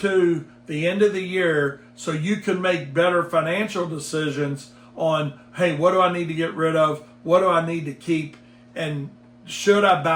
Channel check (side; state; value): both; identical; correlation 1.00